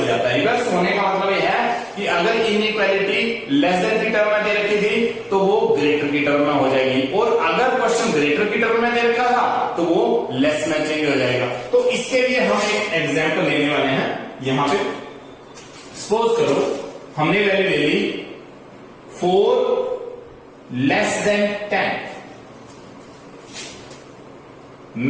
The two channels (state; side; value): identical; both; correlation 1.00